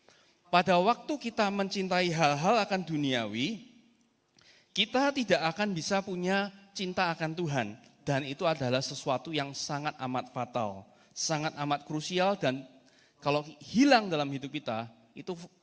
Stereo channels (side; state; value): both; identical; correlation 1.00